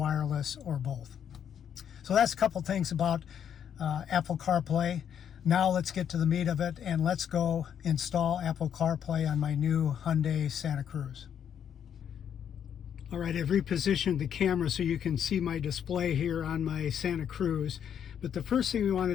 or both. So that's a couple things about Apple CarPlay. Now let's get to the meat of it, and let's go install Apple CarPlay on my new Hyundai Santa Cruz. All right, I've repositioned the camera so you can see my display here on my Santa Cruz. But the first thing we want to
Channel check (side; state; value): right; quieter; 8.7 dB